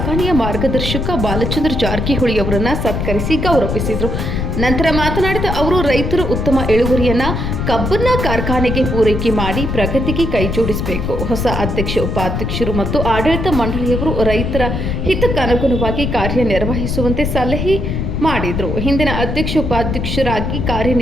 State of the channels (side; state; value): left; noise; rumble, 2 dB below the sound